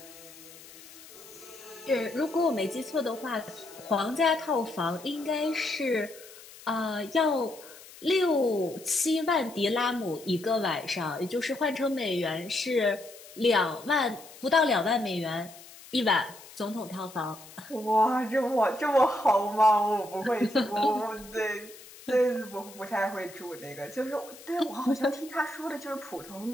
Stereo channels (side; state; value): left; noise; hiss, 19 dB below the sound